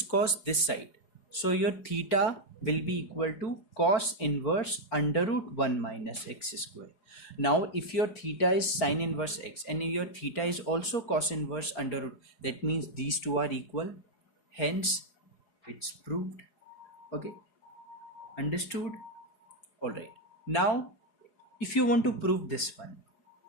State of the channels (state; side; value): late; right; 4.4 ms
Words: cos this side. So your theta will be equal to cos inverse under root 1 minus x square. Now if your theta is sin inverse x and your theta is also cos inverse under root, that means these two are equal. Hence it's proved. Okay, understood? Alright, now if you want to prove this one,